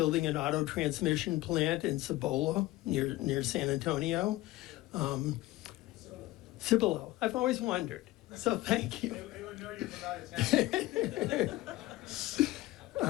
an auto transmission plant in Cibola near San Antonio. Cibola. I've always wondered. So thank you.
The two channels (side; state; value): right; quieter; 17.6 dB